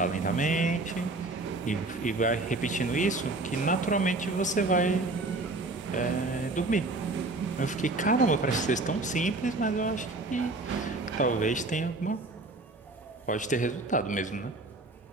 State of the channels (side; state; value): left; quieter; 3.1 dB